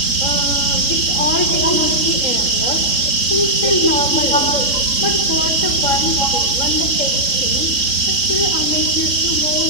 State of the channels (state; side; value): late; right; 3.8 ms